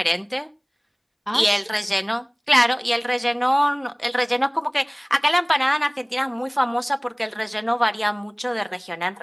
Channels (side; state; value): both; identical; correlation 1.00